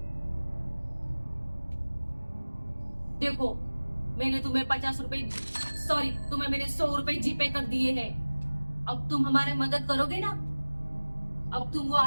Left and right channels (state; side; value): inverted; both; correlation -1.00